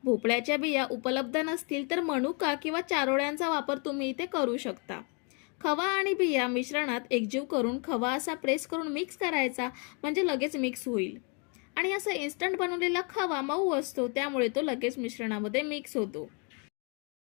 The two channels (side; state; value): right; quieter; 36.0 dB